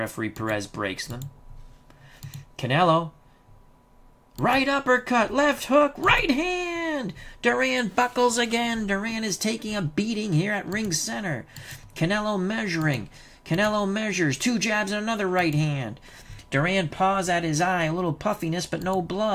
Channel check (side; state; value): both; identical; correlation 1.00